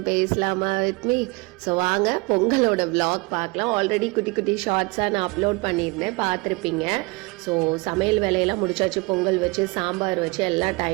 பேசலாமா with me? So வாங்க பொங்கலோட vlog பார்க்கலாம். ஆல்ரெடி குட்டி குட்டி ஷார்ட்ஸாக நான் அப்லோட் பண்ணியிருந்தேன், பார்த்துருப்பீங்க. ஸோ சமையல் வேலையெல்லாம் முடிச்சாச்சு. பொங்கல் வச்சு சாம்பார் வச்சு எல்லாம்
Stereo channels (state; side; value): quieter; left; 26.8 dB